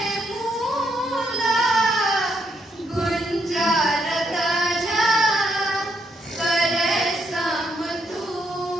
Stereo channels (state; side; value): normal; both; correlation 0.76